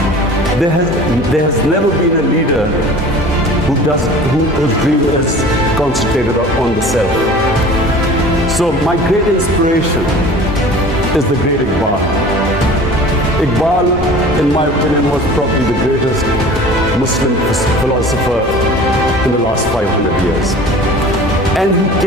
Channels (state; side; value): normal; both; correlation 0.42